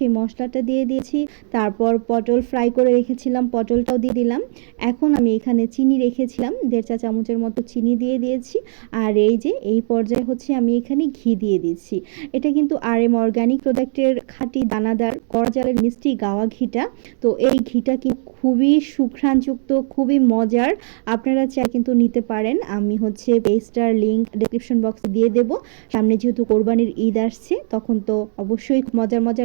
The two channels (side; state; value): left; silent; digital silence